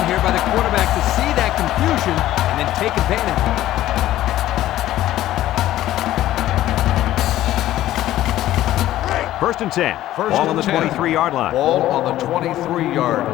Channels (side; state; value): right; quieter; 14.1 dB